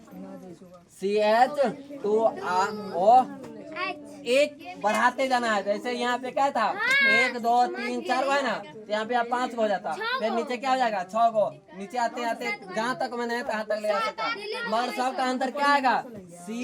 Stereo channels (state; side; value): identical; both; correlation 1.00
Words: CH2O एक बढ़ाते जाना है। जैसे यहाँ पे क्या था 1 2 3 4 है ना, तो यहाँ पे आप 5 को हो जाता, फिर नीचे क्या हो जाएगा 6 को, नीचे आते आते जहाँ तक मैंने तहाँ तक ले आ सकता, मगर सब का अंतर क्या आएगा